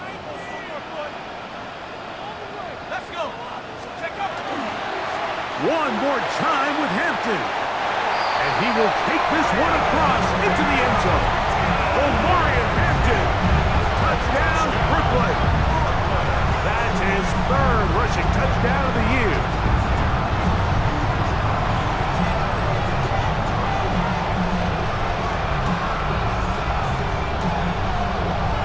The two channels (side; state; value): both; identical; correlation 1.00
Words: Let's go. Check up. One more time with Hampton. And he will take this one across into the end zone. Omarion Hampton. Touchdown, Brooklyn. That's his third rushing touchdown of the year.